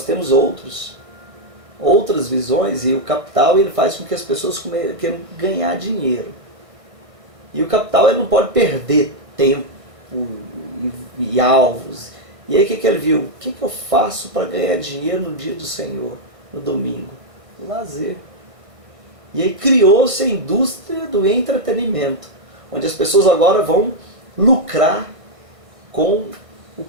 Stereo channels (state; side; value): late; left; 1.5 ms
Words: temos outras visões, e o capital ele faz com que as pessoas queiram ganhar dinheiro. E o capital ele não pode perder tempo e alvos. E aí o que ele viu? O que eu faço para ganhar dinheiro no dia do Senhor, no domingo? O lazer. E aí criou-se a indústria do entretenimento, onde as pessoas agora vão lucrar com o